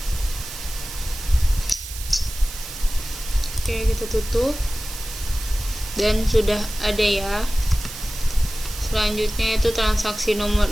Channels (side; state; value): right; noise; hiss, 11 dB below the sound